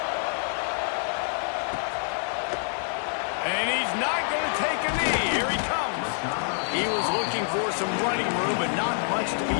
And he's not going to take a knee. Here he comes. He was looking for some running room, but not much to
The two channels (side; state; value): right; silent; 60 dB below the other